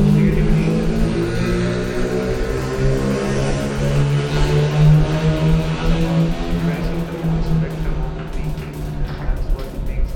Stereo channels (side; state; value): both; identical; correlation 1.00